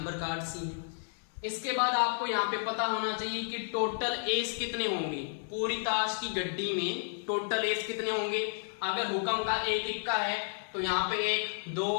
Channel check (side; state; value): right; silent; digital silence